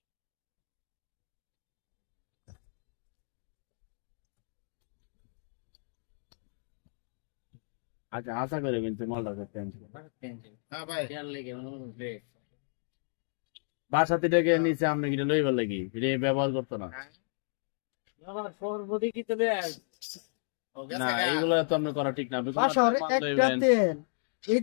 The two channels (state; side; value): silent; right; digital silence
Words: আচ্ছা আশা করে কিন্তু মালটা করতে হ্যাঁ ভাই লেগে বাসাতে ডেকে নিচে আপনি কিনে লইবার লাগি এটা ব্যবহার করতো না। সর্বদি কি তো ও না গেছে এইগুলো তো আপনি করা ঠিক না। আপনি কোনো বাসার মাল একটা লইবেন। তেল এই